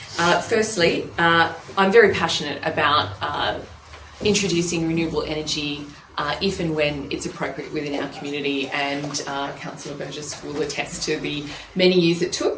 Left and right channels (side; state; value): both; identical; correlation 1.00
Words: firstly, I'm very passionate about introducing renewable energy if and when it's appropriate within our community. And Councillor Burgess will attest to the many years it